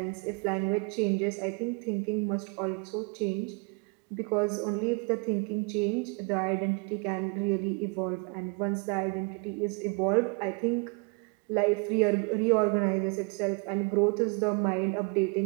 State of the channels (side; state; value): left; quieter; 31.1 dB